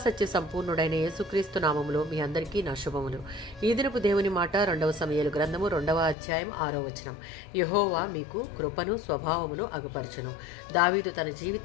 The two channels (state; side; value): drops out; right; at 6.2 s